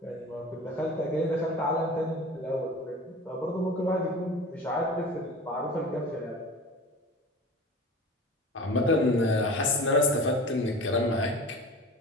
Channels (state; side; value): normal; both; correlation 0.37